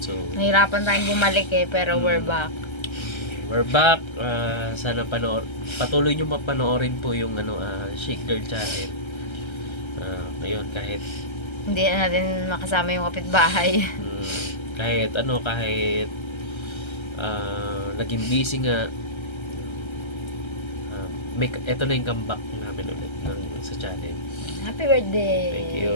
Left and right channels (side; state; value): right; late; 1.3 ms